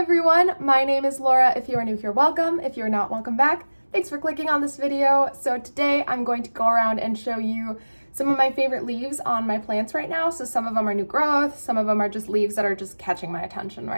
everyone, my name is Laura. If you are new here, welcome. If you're not, welcome back. Thanks for clicking on this video. So today I'm going to go around and show you some of my favorite leaves on my plants right now. So some of them are new growth, some of them are just leaves that are just catching my attention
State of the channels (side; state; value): both; inverted; correlation -1.00